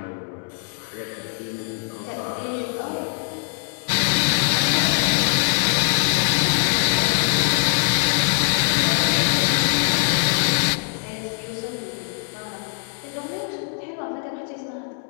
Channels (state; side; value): silent; right; 57 dB below the other